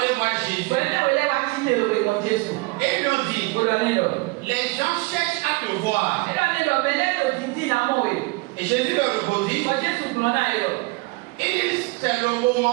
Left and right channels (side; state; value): left; quieter; 24.6 dB